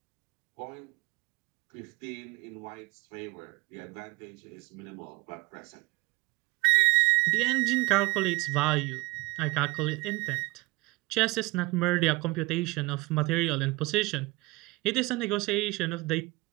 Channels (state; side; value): quieter; left; 22.4 dB